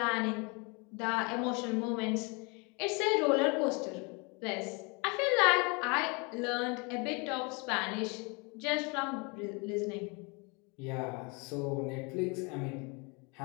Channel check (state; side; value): quieter; right; 30.7 dB